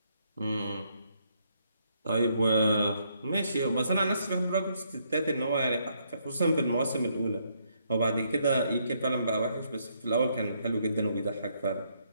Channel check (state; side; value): inverted; both; correlation -0.73